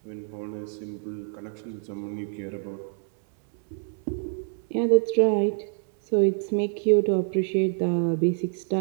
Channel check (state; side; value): silent; left; 61 dB below the other